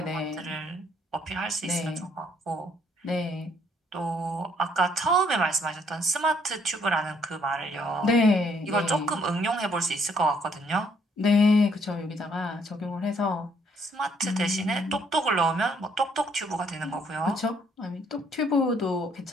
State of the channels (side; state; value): both; normal; correlation 0.67